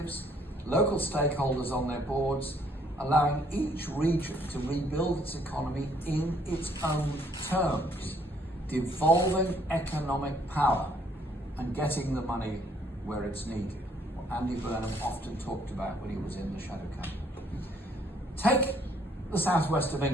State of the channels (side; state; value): both; normal; correlation 0.65